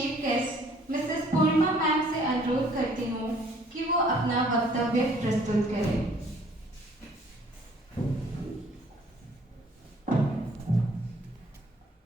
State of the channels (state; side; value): normal; both; correlation 0.59